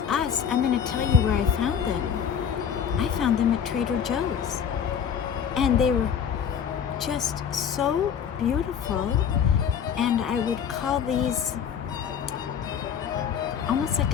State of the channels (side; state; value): right; quieter; 7.9 dB